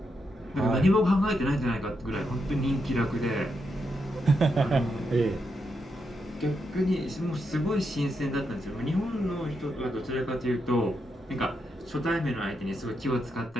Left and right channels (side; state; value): both; normal; correlation 0.83